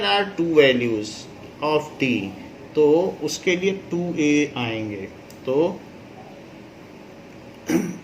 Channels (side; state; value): both; identical; correlation 1.00